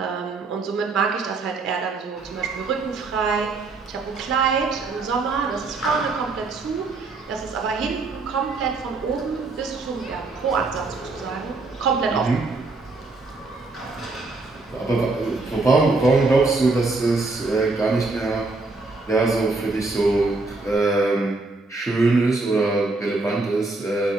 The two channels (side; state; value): left; quieter; 3.5 dB